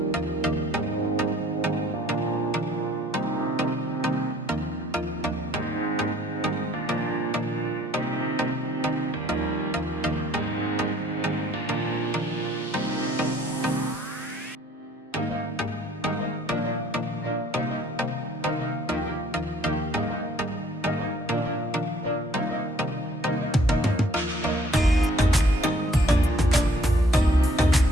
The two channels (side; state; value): both; normal; correlation 0.59